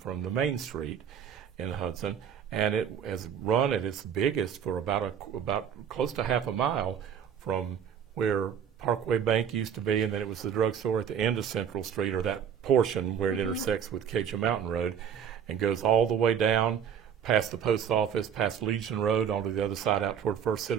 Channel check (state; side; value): quieter; left; 8.1 dB